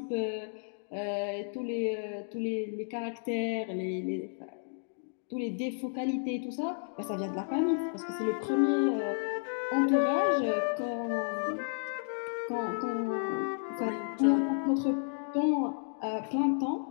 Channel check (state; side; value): silent; right; digital silence